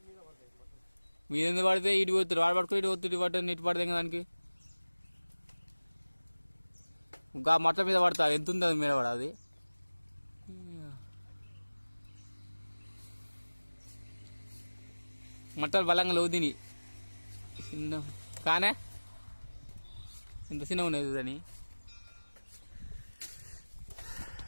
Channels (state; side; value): inverted; both; correlation -1.00